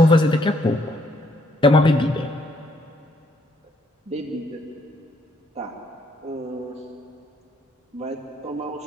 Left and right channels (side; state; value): both; normal; correlation 0.70